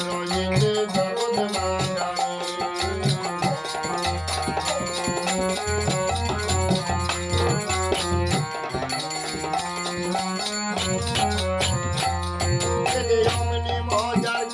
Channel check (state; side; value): identical; both; correlation 1.00